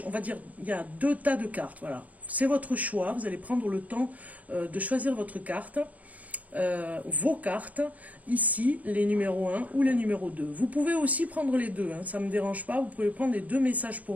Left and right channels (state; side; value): late; left; 0.073 ms